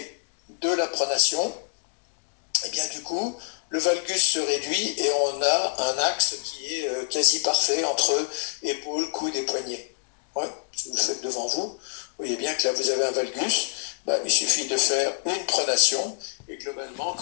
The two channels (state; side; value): silent; right; digital silence